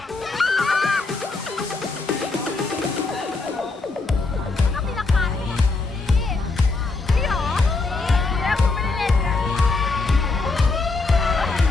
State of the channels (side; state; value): right; quieter; 3.7 dB